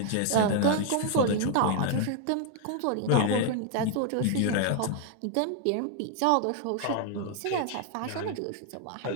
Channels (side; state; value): both; different; correlation 0.00